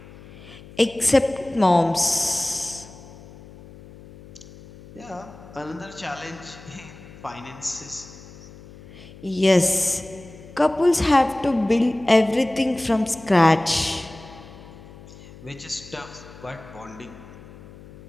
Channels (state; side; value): noise; left; hum, 19 dB below the sound